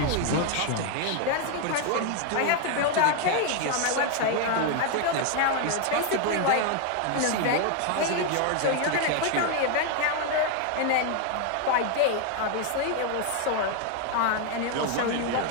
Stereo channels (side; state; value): both; different; correlation 0.01